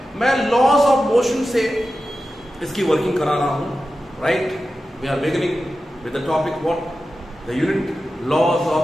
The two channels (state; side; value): normal; both; correlation 0.93